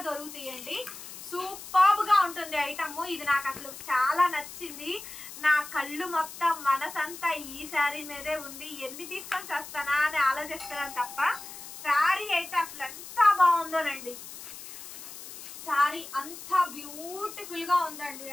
దొరుకుతాయండి. సూపర్బ్ గా ఉంటుంది ఐటమ్. ఇది నాకు అసలు చాలా నచ్చింది. నా కళ్ళు మొత్తం మనసంతా ఈ శారీ మీదే ఉంది. ఎన్ని తీసుకొని వస్తానా అని ఆలోచిస్తున్నాను తప్ప శారీ అయితే అసలు ఎంత బాగుందోనండి. శారీ అంత బ్యూటిఫుల్ గా ఉందండి.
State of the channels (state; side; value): noise; left; hiss, 13 dB below the sound